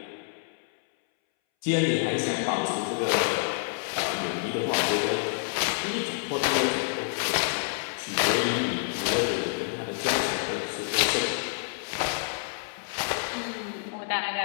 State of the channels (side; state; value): right; silent; 59 dB below the other